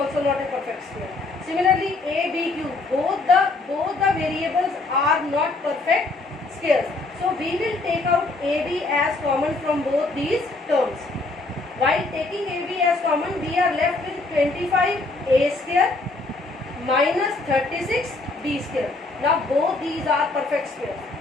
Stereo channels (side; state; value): right; quieter; 3.3 dB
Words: not a perfect square. Similarly, a b cube, both the variables are not perfect squares. So we will take out ab as common from both these terms. While taking ab as common, we are left with 25a square minus 36b square. Now both these are perfect squares.